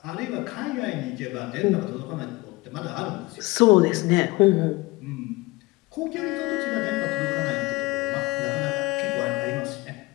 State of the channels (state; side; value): quieter; right; 22.2 dB